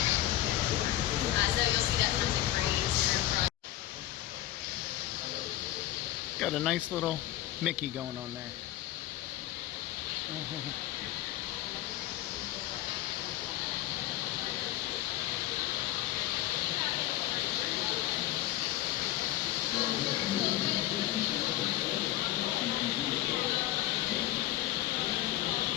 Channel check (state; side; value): quieter; right; 14.9 dB